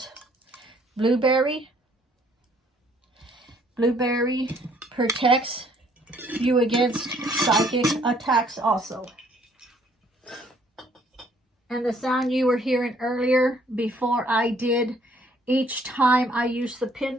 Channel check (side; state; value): both; normal; correlation 0.63